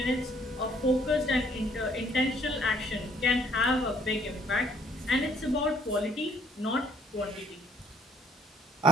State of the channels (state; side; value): normal; both; correlation 0.63